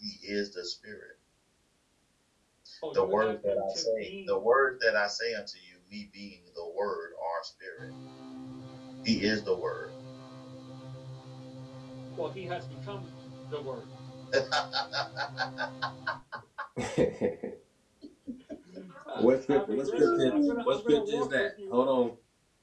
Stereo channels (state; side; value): identical; both; correlation 1.00